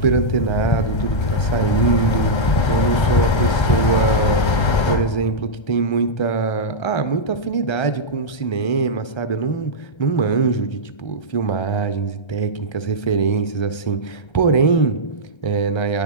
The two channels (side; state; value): right; late; 1.3 ms